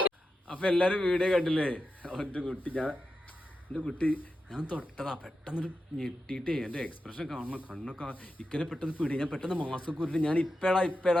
അപ്പൊ എല്ലാരും വീഡിയോ കണ്ടില്ലേ? എന്റെ കുട്ടി ഞാൻ തൊട്ടതാ, പെട്ടെന്നൊരു ഞെട്ടിയിട്ടേ എന്റെ എക്സ്പ്രഷൻ കാണണം, കണ്ണൊക്കെ ഇക്കനെ പെട്ടെന്ന് പിടി. ഞാൻ പെട്ടെന്ന് മാസ്ക് ഉരുട്ടി ഞാൻ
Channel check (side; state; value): both; normal; correlation 0.89